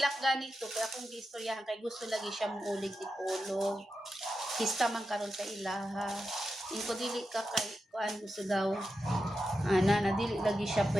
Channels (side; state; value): both; normal; correlation 0.89